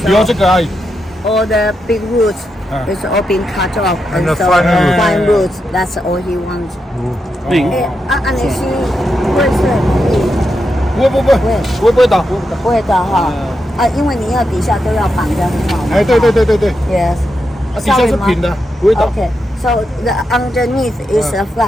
留这个而已。 All the big roots is all being cut off, And the so fine roots. fine roots. That's all he wants. 安妮希会是不会倒。不会的哈因为你要底下都要绑得很好嘛。哎，对。 Yes. 底下是平的，不会倒。 Okay. So the underneath is a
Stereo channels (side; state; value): both; normal; correlation 0.85